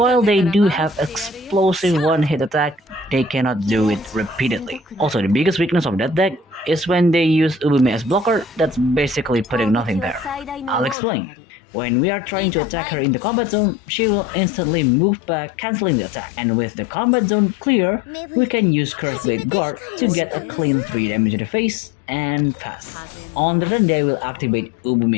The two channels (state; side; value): drops out; right; at 11.0 s